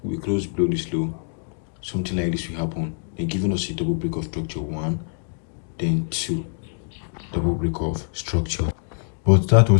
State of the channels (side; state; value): right; silent; digital silence